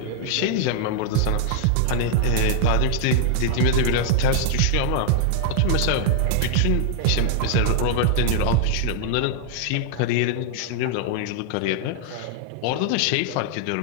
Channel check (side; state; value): both; different; correlation -0.01